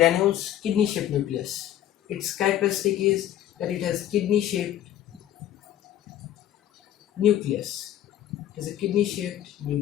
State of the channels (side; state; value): right; quieter; 11.8 dB